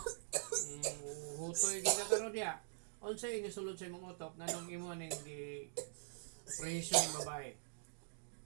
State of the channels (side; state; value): left; silent; digital silence